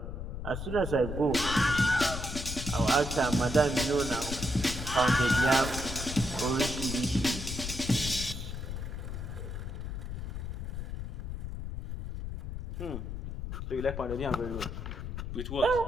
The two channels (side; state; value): left; noise; rumble, 6 dB below the sound